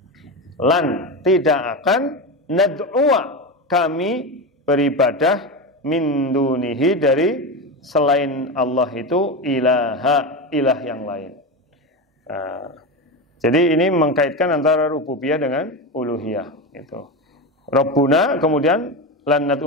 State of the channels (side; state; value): both; normal; correlation 0.18